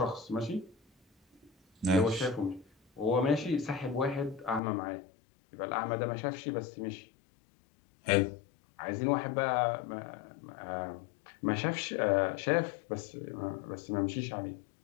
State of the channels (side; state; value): right; drops out; at 4.6 s